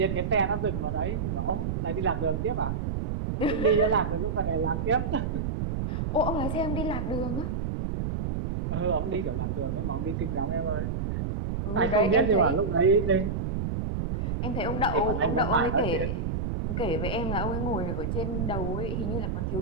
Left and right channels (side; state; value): right; noise; rumble, 2 dB below the sound